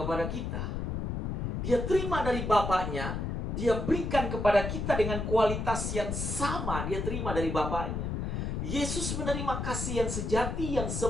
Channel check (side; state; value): left; noise; rumble, 2 dB below the sound